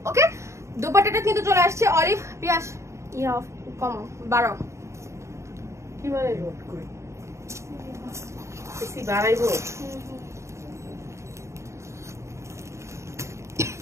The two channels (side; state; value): left; late; 0.14 ms